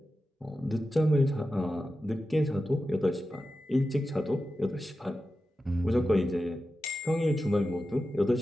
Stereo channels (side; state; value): both; normal; correlation 0.92